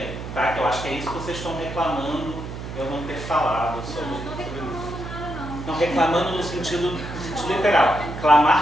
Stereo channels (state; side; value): noise; right; hum, 9 dB below the sound